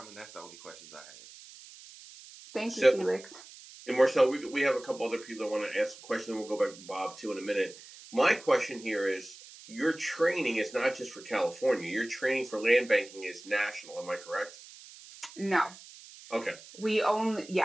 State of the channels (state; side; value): noise; right; hiss, 18 dB below the sound